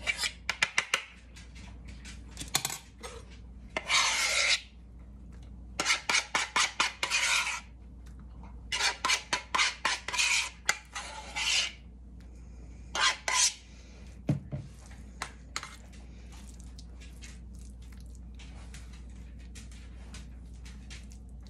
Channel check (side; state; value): both; identical; correlation 1.00